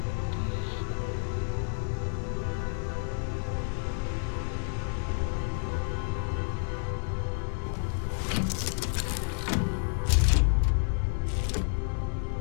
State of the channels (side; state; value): right; silent; digital silence